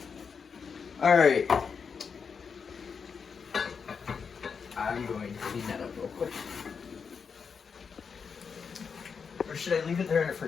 All right. I'm going to clean that up real quick. Or should I leave it there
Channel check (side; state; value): right; quieter; 5.9 dB